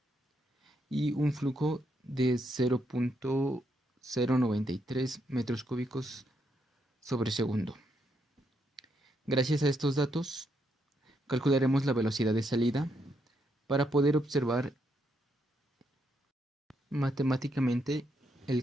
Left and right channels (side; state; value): both; normal; correlation 0.78